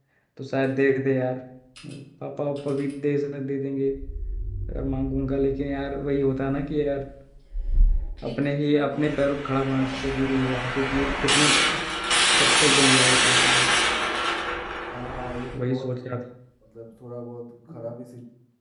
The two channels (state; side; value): identical; both; correlation 1.00